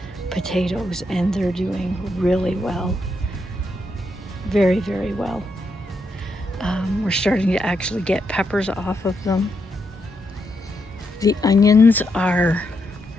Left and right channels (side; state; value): both; normal; correlation 0.81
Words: potatoes, and they're doing really well. Very, very well. We're starting to actually get peppers off of them. The onions are